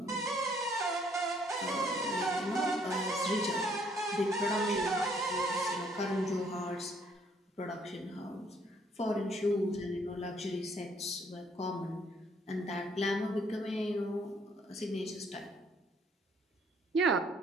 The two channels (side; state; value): both; normal; correlation 0.65